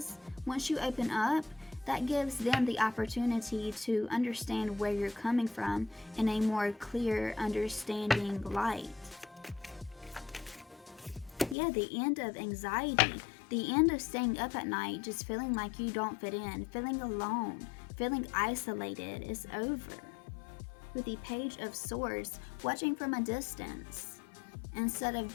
once you open up, that gives them the opportunity to understand where you're coming from in a more clear, understanding light. Yeah, the end of anxiety, the end of staying up at night just feeling like you don't fit in, feeling alone, feeling isolated is over. With the Page of Swords, watching from a distance instead of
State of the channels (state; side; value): drops out; right; at 11.6 s